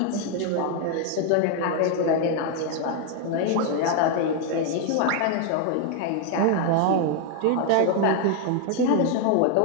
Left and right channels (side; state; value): both; different; correlation 0.00